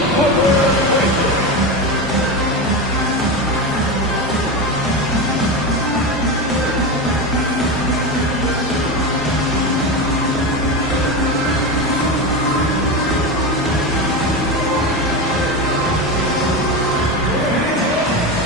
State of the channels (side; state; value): both; normal; correlation 0.19